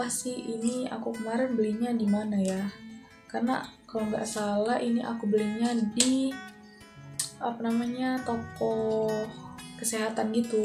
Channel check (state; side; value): identical; both; correlation 1.00